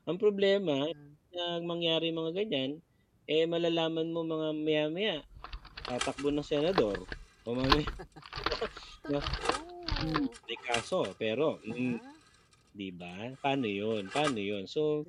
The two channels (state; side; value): identical; both; correlation 1.00